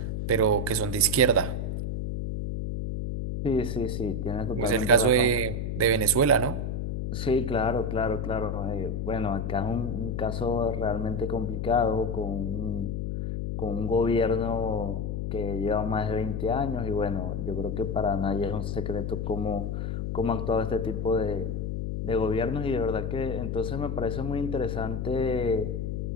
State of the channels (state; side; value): noise; left; hum, 2 dB below the sound